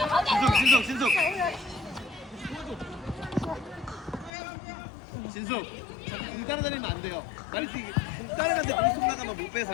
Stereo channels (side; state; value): right; drops out; at 4.3 s